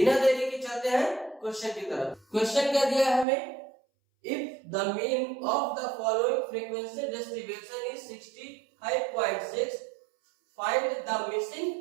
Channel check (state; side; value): drops out; left; at 3.2 s